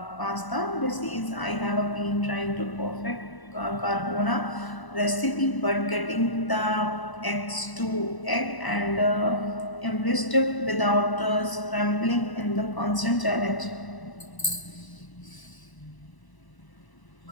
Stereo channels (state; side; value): late; right; 1.0 ms